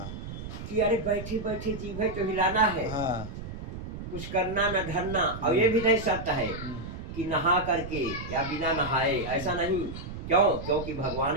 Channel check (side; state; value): right; noise; rumble, 9 dB below the sound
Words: कि अरे बैठे बैठे जी भाई तो हिलाना है, हाँ। कुछ करना न धरना। और ये भी नहीं शर्त है हम्म, कि नहा करके या बिना नहाए, ऐसा नहीं। क्यों? क्योंकि